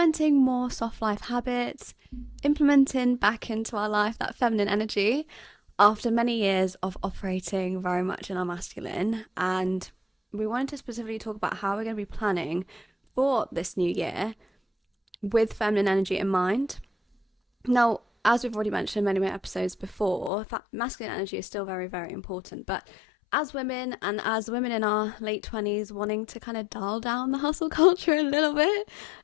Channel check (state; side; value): drops out; right; at 20.3 s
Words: more soft life habits, implementing back into our life that feminine energy after many years of operating very much in our masculine. And we wanted to specifically talk about how we're going to be planning for this new year with feminine energy in mind. Now, as we've already mentioned in many episodes before, masculine energy is still very, very important. But as women, and as women in our late 20s wanting to kind of dial down the hustle culture a little bit,